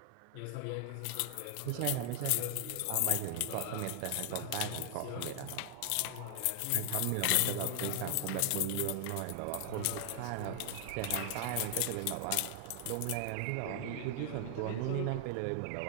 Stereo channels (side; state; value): both; different; correlation 0.00